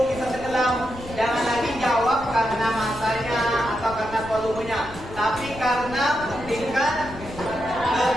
bisa tenggelam, jangan lagi jawab karena masanya atau karena volumenya, tapi karena tingkat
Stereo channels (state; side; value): noise; left; rumble, 15 dB below the sound